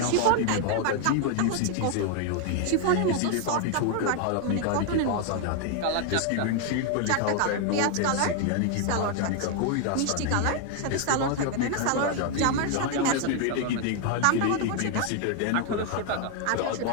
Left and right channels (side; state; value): both; different; correlation 0.00